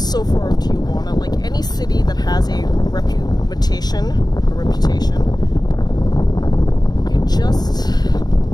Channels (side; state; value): right; late; 0.19 ms